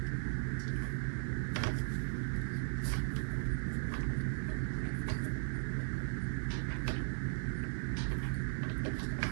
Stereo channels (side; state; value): left; silent; digital silence